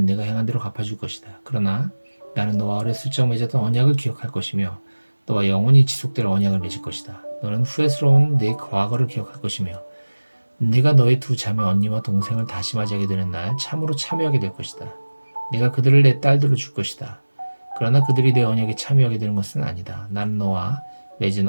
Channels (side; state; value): both; inverted; correlation -1.00